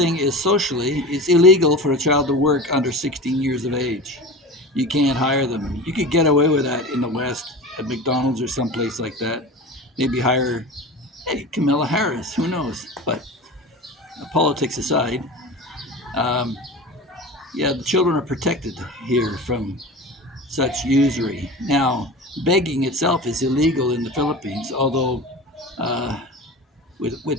is socially, it's illegal for a child to work under 16 years of age. You can't hire them. You could get away with that in the West at McDonald's or someplace like that. Maybe hire, hey, Camilla Harris, who knows? But politics aside, um, yeah, the children are protected here from such usury. Now, begging itself is illegal in the Philippines, although uh,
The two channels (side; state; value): both; normal; correlation 0.32